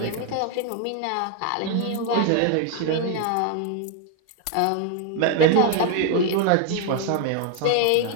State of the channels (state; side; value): different; both; correlation 0.01